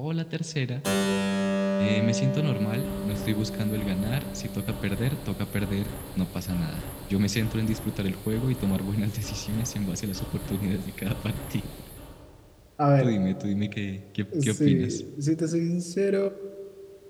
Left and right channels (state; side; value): identical; both; correlation 1.00